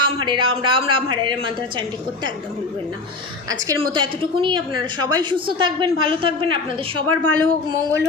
রাম রাম হরে হরে মন্ত্র চ্যান্টিং করতে একদম ভুলবেন না। আজকের মতো এতটুকুনি। আপনারা সবাই সুস্থ থাকবেন, ভালো থাকবেন, আপনাদের সবার ভালো হোক, মঙ্গল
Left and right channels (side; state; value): right; quieter; 3.6 dB